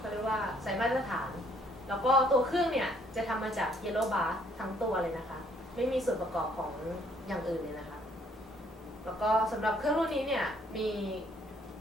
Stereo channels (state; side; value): normal; both; correlation 0.65